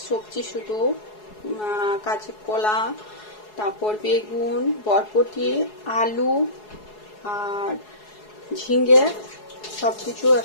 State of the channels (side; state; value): right; late; 4.7 ms